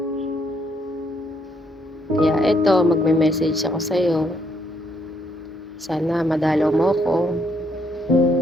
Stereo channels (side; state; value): both; normal; correlation 0.72